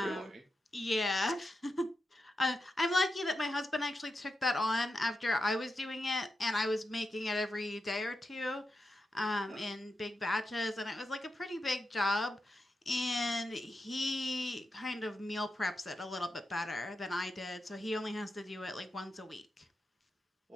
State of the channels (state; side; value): normal; both; correlation 0.88